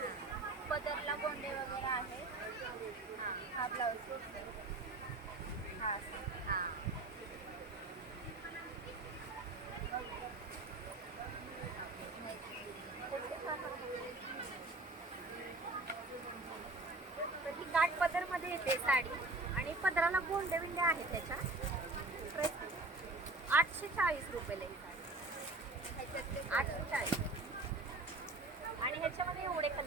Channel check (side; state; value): left; quieter; 3.0 dB